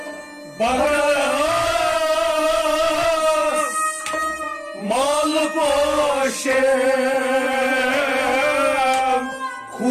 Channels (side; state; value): both; identical; correlation 1.00